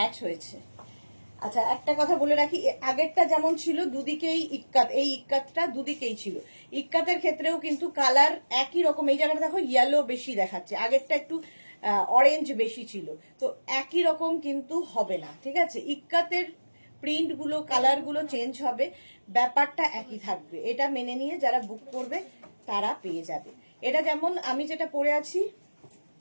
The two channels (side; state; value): both; inverted; correlation -1.00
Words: হয়েছে। আচ্ছা একটা কথা বলে রাখি, আগেরটা যেমন ছিল দুদিকেই ইক্কাত, এই ইক্কাতটা দুদিকেই ছিল। ইক্কাতের ক্ষেত্রেও কিন্তু কালার একই রকম, এই জায়গাটা দেখো ইয়েলো বেশি দেখাচ্ছে, আগেরটা একটু অরেঞ্জ বেশি ছিল, তো একই রকম কিন্তু হবে না, ঠিক আছে? ইক্কাতের প্রিন্ট গুলো, কালার গুলো চেঞ্জ হবে, ব্যাপারটা একই থাকবে, এটা মেনে নিয়ে যারা বুক করবে তারা পেয়ে যাবে। এটা যেমন আমি যেটা পরে আছি,